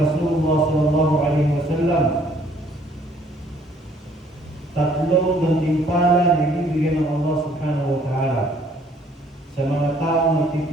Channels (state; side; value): normal; both; correlation 0.61